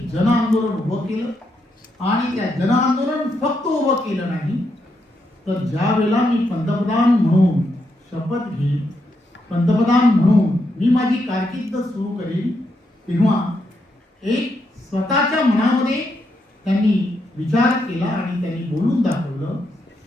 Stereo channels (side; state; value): both; normal; correlation 0.80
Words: जन आंदोलन उभं केलं. आणि त्या जन आंदोलन फक्त उभं केलं नाही तर ज्या वेळेला मी पंतप्रधान म्हणून शपथ घेईन, पंतप्रधान म्हणून मी माझी कारकीर्द सुरू करेन, तेव्हा एक स्वतःच्या मनामध्ये त्यांनी विचार केला आणि त्यांनी बोलून दाखवलं,